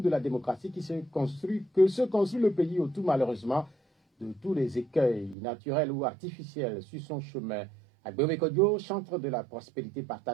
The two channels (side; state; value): left; drops out; at 5.4 s